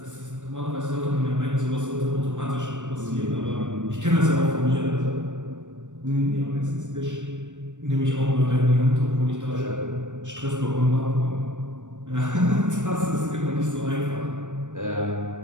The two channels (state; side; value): late; left; 0.85 ms